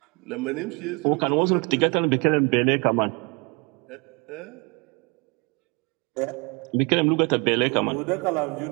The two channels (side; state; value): left; quieter; 30.6 dB